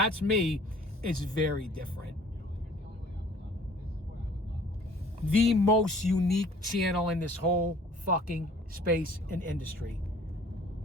me, is very different. The most unique channel in this whole fucking space and industry.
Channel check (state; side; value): normal; both; correlation 0.53